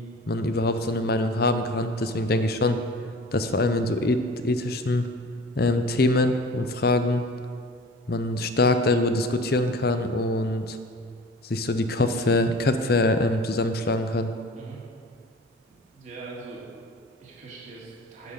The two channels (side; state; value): both; normal; correlation 0.41